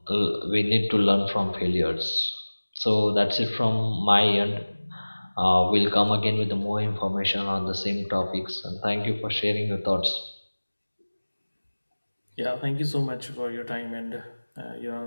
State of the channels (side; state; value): both; inverted; correlation -1.00